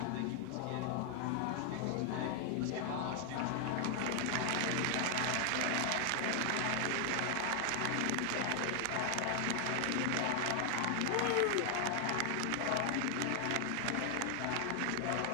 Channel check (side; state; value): both; different; correlation 0.00